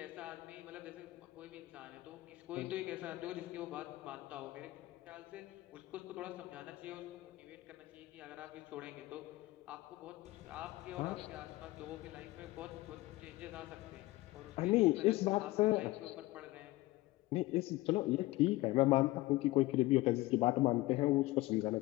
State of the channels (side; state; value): right; quieter; 19.2 dB